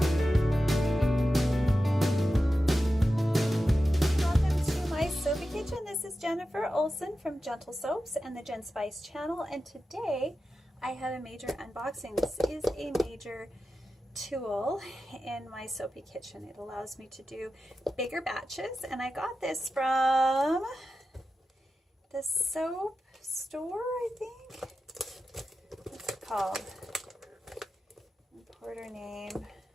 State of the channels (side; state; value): both; normal; correlation 0.92